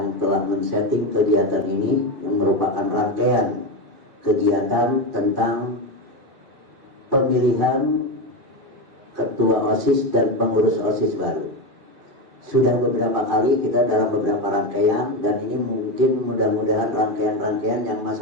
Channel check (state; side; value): late; left; 2.5 ms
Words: telah men-setting kegiatan ini, yang merupakan rangkaian kegiatan tentang pemilihan ketua OSIS dan pengurus OSIS baru. Sudah beberapa kali kita dalam beberapa rangkaian, dan ini mungkin mudah-mudahan rangkaian-rangkaian yang